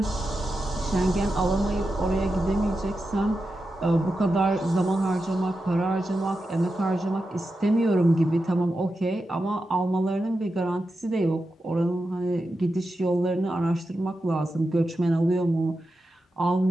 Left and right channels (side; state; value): both; normal; correlation 0.89